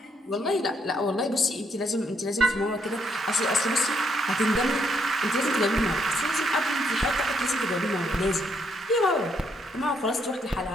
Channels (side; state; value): both; normal; correlation 0.74